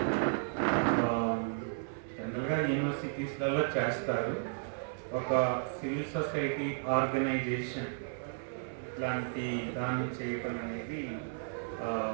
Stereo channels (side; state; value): left; silent; 55 dB below the other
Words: జనరల్గా యూనివర్సిటీస్లలో చేస్తారు. ఒక సివిల్ సొసైటీ ఆర్గనైజేషన్ లాంటి దాన్ని చేయటం అనేది